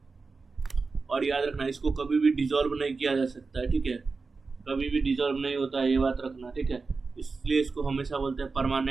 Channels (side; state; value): left; quieter; 4.3 dB